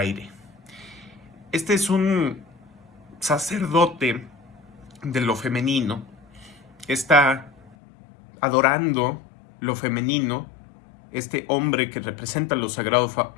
Este es un sacerdote de lo femenino, está adorando lo femenino, este hombre que representa lo sagrado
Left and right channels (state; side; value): drops out; right; at 7.8 s